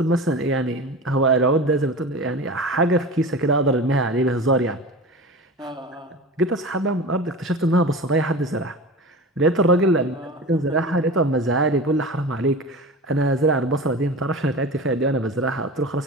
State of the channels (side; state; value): both; normal; correlation 0.32